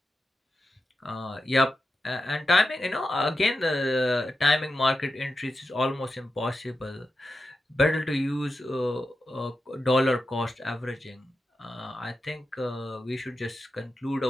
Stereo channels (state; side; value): normal; both; correlation 0.90